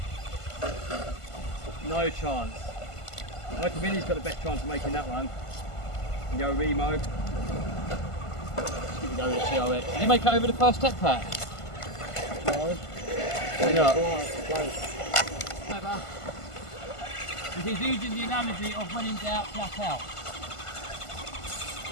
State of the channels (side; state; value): right; late; 1.5 ms